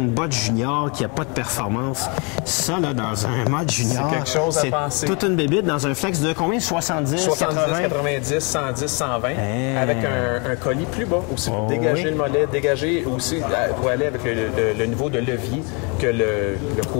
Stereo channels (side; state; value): right; quieter; 32.7 dB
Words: botte junior qui n'a pas de performance, ça, là, dans un mode junior, C'est quelque chose à penser. toute une bébite dans un flex de combien? 70, 70, 80? 90, 110, 120, avec un colis plus bas aussi pour dégager le mollet, dégager aussi pour aller avec le niveau de levier que le